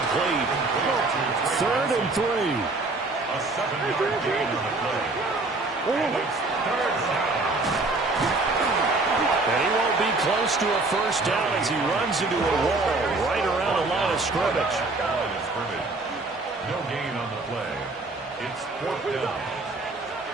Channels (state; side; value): quieter; left; 3.3 dB